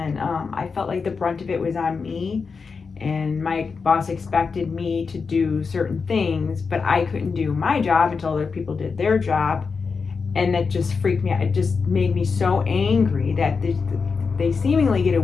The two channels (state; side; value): quieter; right; 5.1 dB